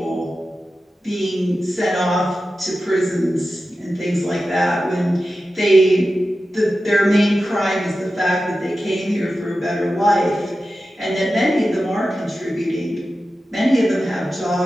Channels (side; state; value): both; normal; correlation 0.93